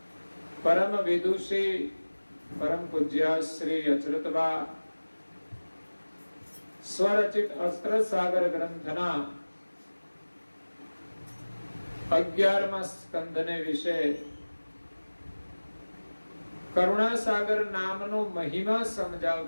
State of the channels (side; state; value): both; inverted; correlation -1.00